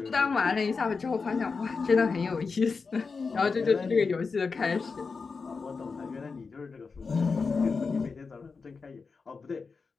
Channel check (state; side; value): quieter; right; 4.8 dB